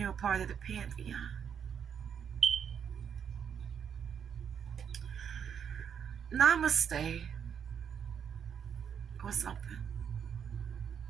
a part of the pantheon. Namaste or something.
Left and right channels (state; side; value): quieter; left; 7.7 dB